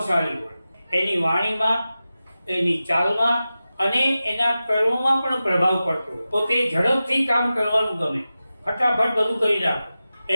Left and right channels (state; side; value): inverted; both; correlation -0.94